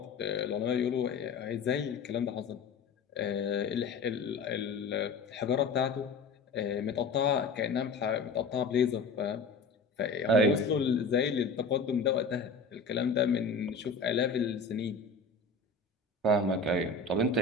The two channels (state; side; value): quieter; right; 4.0 dB